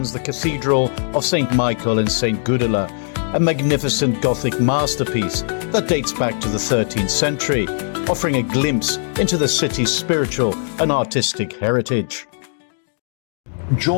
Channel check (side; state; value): right; silent; digital silence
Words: the Cathedral of St. Michael and St. Gudula, a magnificent Gothic masterpiece that dates back to the 13th century, offering a glimpse into the city's spiritual and artistic heritage.